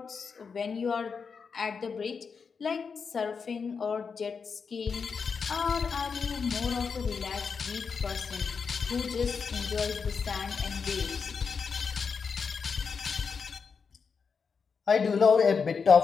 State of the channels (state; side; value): quieter; right; 5.6 dB